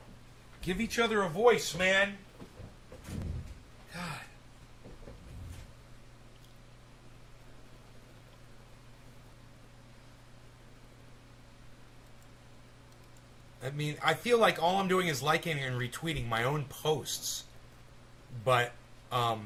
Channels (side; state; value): both; identical; correlation 1.00